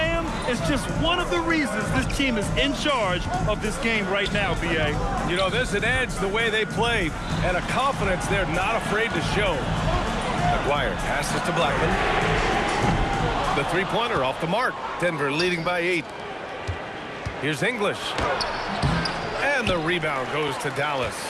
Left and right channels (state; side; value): identical; both; correlation 1.00